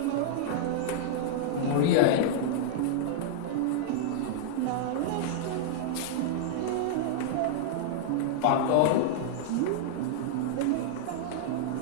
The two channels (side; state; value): both; different; correlation -0.01